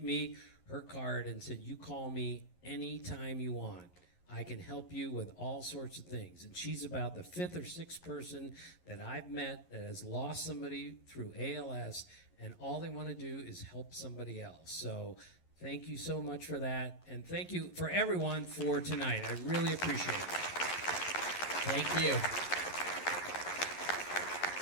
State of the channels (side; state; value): right; late; 11 ms